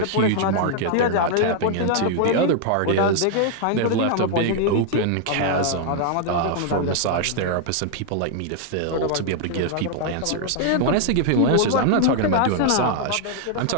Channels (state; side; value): different; both; correlation 0.00